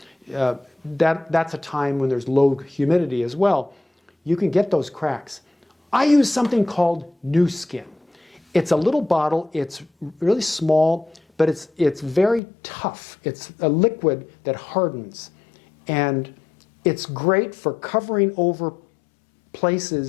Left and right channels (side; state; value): right; drops out; at 12.4 s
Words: that's a time when there's low humidity as well, you can get those cracks. I use something called new skin. It's a little bottle, it's really small, but it's very tough. It's a liquid that hardens, and it's great for covering over